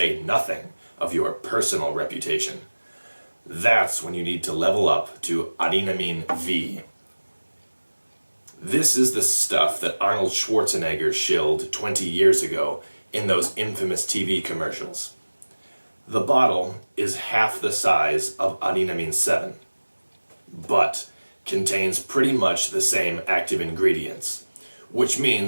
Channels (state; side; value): inverted; both; correlation -1.00